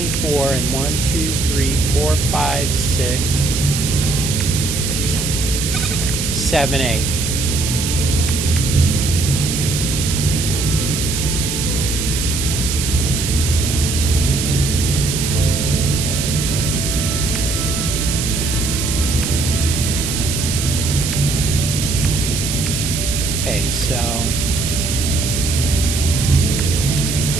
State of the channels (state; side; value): noise; right; hiss, 3 dB below the sound